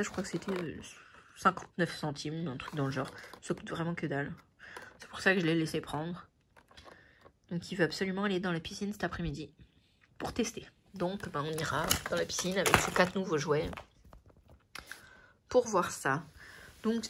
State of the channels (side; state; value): both; identical; correlation 1.00